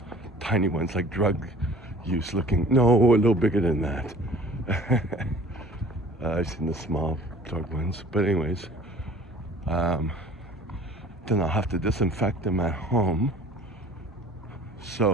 tiny ones, like drug use looking. No, a little bigger than that. I've seen the small drug ones, but anyways, then I'll have to disinfect them at home.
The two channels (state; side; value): normal; both; correlation 0.48